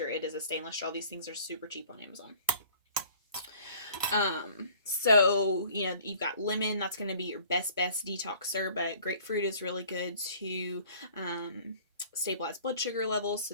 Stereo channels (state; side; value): inverted; both; correlation -0.52